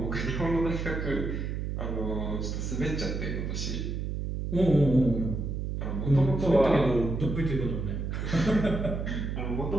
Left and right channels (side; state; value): right; noise; hum, 3 dB below the sound